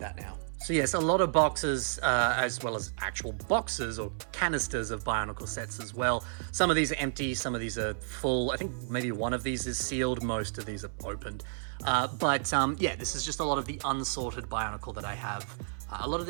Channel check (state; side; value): silent; left; 57 dB below the other